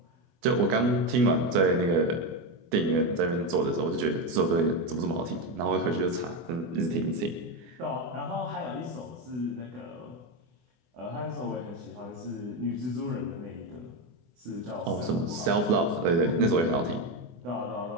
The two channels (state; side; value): late; left; 24 ms